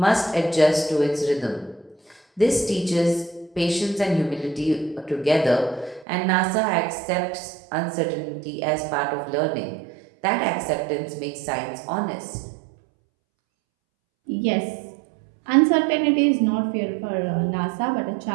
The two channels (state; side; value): drops out; left; at 6.1 s